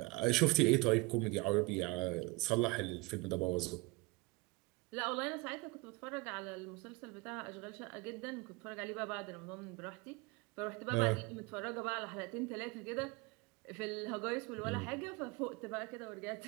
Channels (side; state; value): left; quieter; 24.7 dB